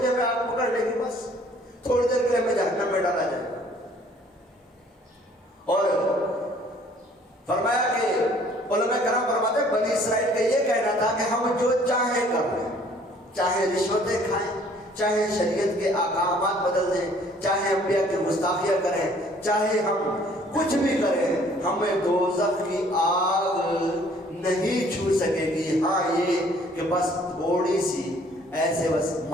لیے ہمیں آگ پکڑ لے گی، بس تھوڑی دیر کے لیے ہمیں جہنم میں ڈالا جائے گا. اور فرمایا کہ علماء کرام فرماتے ہیں بنی اسرائیل کا یہ کہنا تھا کہ ہم جو چاہیں کر لیں، چاہے رشوتیں کھائیں، چاہے شریعت کے احکامات بدل دیں، چاہے انبیاء کی گستاخیاں کریں، چاہے ہم کچھ بھی کریں، ہمیں دوزخ کی آگ نہیں چھو سکے گی. ہاں یہ کہ بس تھوڑی سی ایسے بس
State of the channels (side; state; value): both; normal; correlation 0.57